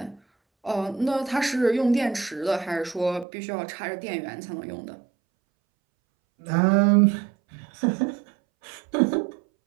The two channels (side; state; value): left; drops out; at 3.2 s